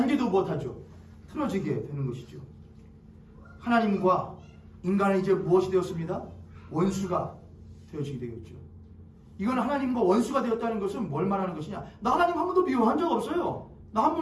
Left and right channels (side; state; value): both; identical; correlation 1.00